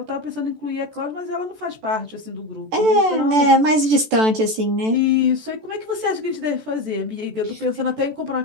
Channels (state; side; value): late; left; 14 ms